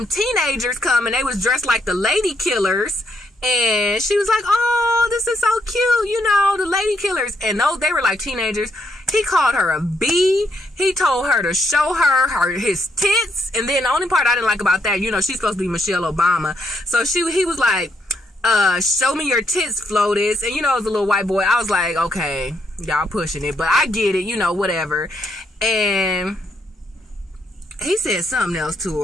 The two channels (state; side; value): normal; both; correlation 0.76